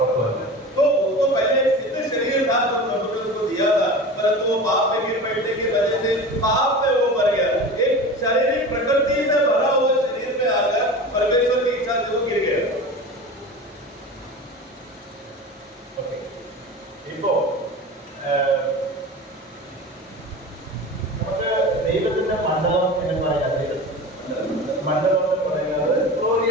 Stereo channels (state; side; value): normal; both; correlation 0.32